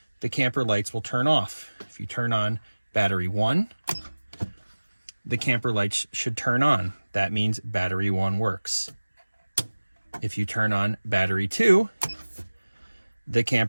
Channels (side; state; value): both; inverted; correlation -1.00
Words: the camper lights will turn off. If you turn on battery 1, the camper lights should turn on. That means battery 1 works. If you turn on battery 2, the